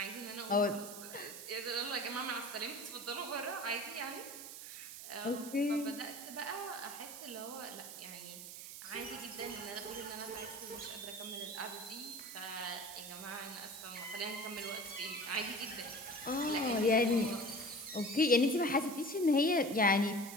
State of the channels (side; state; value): right; noise; hiss, 10 dB below the sound